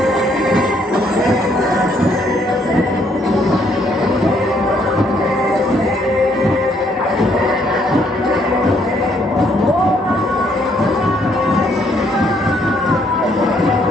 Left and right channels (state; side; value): normal; both; correlation 0.69